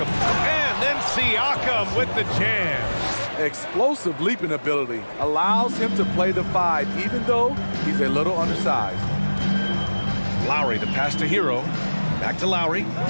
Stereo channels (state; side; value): inverted; both; correlation -1.00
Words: And then Siakam with the jam. Explosive leaping ability allows him to play the 5, even though he's a little undersized. Lowry, the pass to Hero. Back to Lowry.